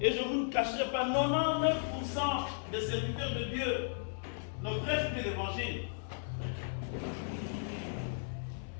et je ne vous ne cacherai pas, 99% des serviteurs de Dieu ne prêchent plus l'évangile.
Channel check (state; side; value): silent; right; 54 dB below the other